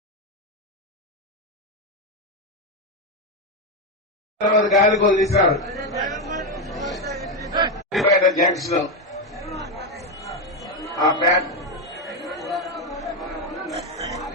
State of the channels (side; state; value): both; normal; correlation 0.08